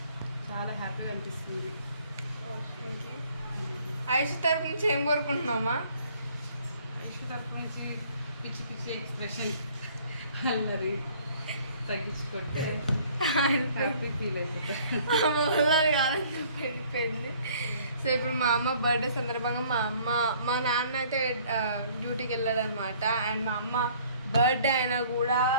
చాలా హ్యాపీగా అనిపిస్తుంది. ఐషు తరపు నుంచి ఏం కోరుకుంటున్నామా? ఐషు తరపు నుంచి పిచ్చి పిచ్చి ఎక్స్ప్రెషన్ అల్లరి తగ్గించుకుంటే హ్యాపీ ఫీల్ అయిపోయింది. సో ఇప్పుడు మా అమ్మ బర్త్డే సందర్భంగా మా నాన్న అయితే డ్యూటీకి వెళ్ళాడు అనమాట. అండ్ మా అమ్మ బర్త్డే అయినా కూడా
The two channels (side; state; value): both; inverted; correlation -0.57